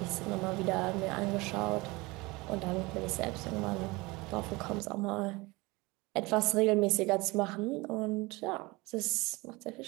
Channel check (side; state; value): left; quieter; 23.3 dB